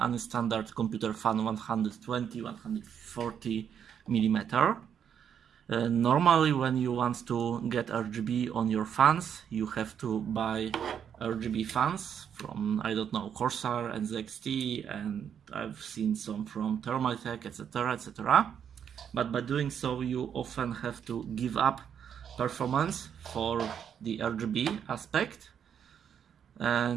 standard computer fan 120-140 millimeter. Normally when you want to get RGB on your fans, you have to buy RGB fans from, I don't know, Corsair and ZXT, and I've seen some from Thermaltake, etc, etc. But by doing so, you often have to give up performance for the RGB aspect.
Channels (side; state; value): left; quieter; 8.3 dB